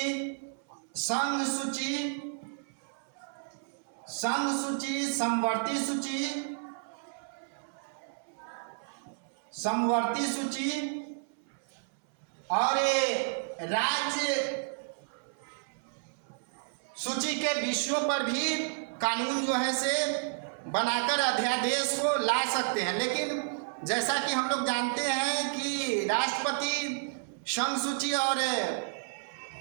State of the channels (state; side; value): silent; left; 57 dB below the other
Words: समवर्ती सूची और राज्य सूची के विषयों पर भी कानून जो है से बनाकर अध्यादेश को ला सकते हैं। लेकिन जैसा कि हम लोग जानते हैं कि राष्ट्रपति संघ सूची और